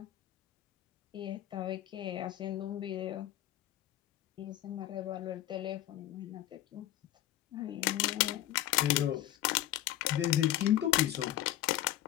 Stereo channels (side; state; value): right; quieter; 13.4 dB